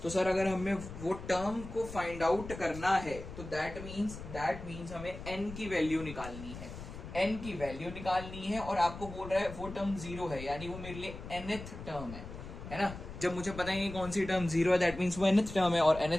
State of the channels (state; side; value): noise; left; rumble, 11 dB below the sound